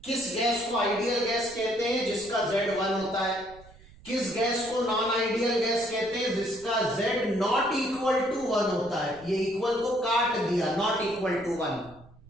किस गैस को आइडियल गैस कहते हैं? जिसका Z1 होता है। किस गैस को नॉन आइडियल गैस कहते हैं? जिसका Z नॉट इक्वल टू 1 होता है। ये इक्वल को काट दिया, नॉट इक्वल टू 1।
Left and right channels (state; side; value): noise; right; rumble, 23 dB below the sound